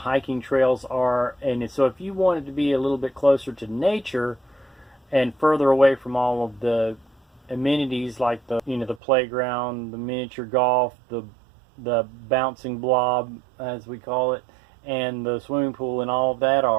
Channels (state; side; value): drops out; left; at 9.0 s